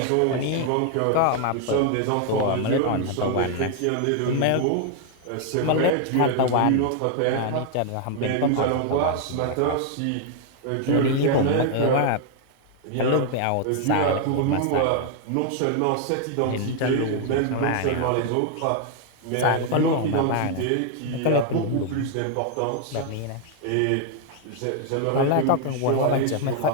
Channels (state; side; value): different; both; correlation 0.00